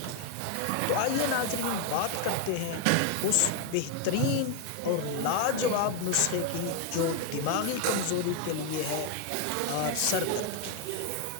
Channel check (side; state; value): both; different; correlation 0.01